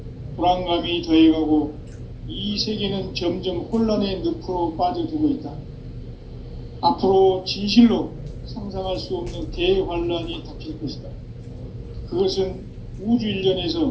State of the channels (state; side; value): identical; both; correlation 1.00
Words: 불안감이 더해가고 이 세계는 점점 혼란의 늪으로 빠져들고 있다. 앞으로 진실로 상상할 수 없는 대환란이 닥칠 것이다. 그것은 우주